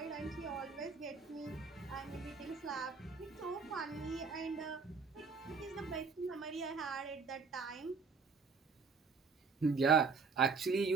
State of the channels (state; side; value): quieter; left; 5.0 dB